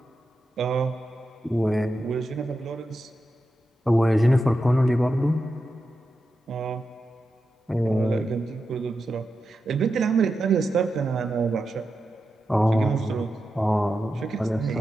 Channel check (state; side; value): normal; both; correlation 0.89